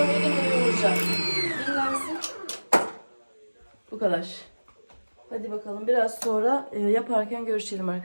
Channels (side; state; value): both; inverted; correlation -1.00